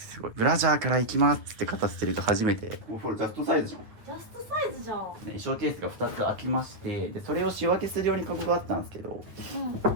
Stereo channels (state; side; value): late; left; 9.2 ms